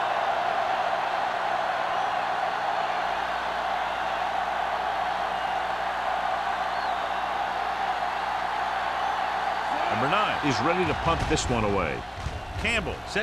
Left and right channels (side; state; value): both; identical; correlation 1.00